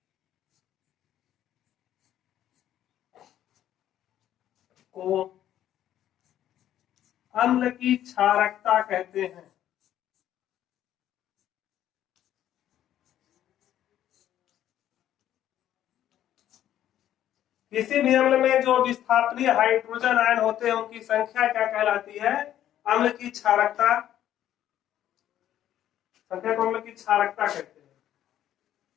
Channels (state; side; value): quieter; right; 11.6 dB